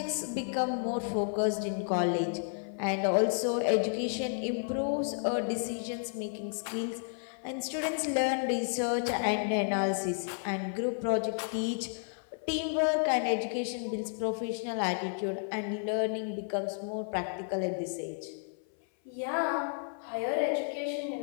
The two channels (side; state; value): right; silent; 56 dB below the other